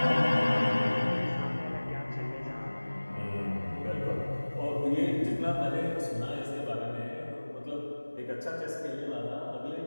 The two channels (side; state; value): both; inverted; correlation -1.00